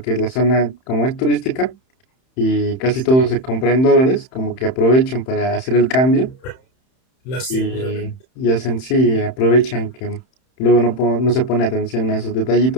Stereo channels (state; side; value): late; right; 31 ms